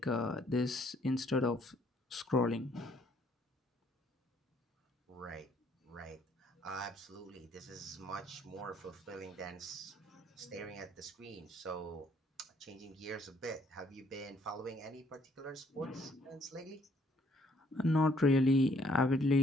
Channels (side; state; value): both; normal; correlation 0.65